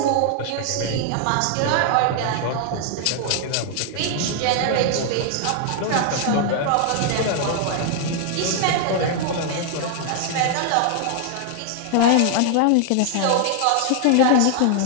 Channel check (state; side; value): different; both; correlation 0.00